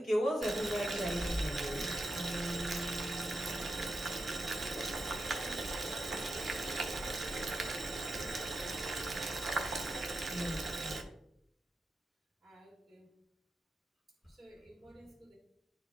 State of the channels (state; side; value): normal; both; correlation 0.88